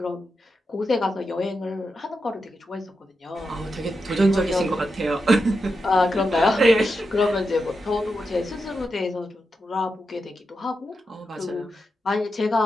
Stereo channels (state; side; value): normal; both; correlation 0.87